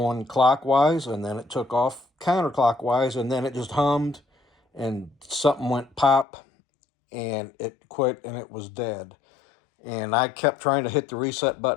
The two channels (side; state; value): right; drops out; at 6.2 s